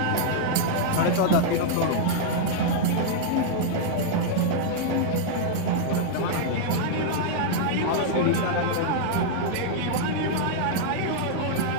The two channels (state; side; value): different; both; correlation -0.01